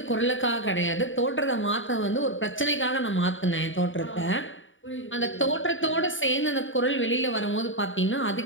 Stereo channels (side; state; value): right; late; 0.56 ms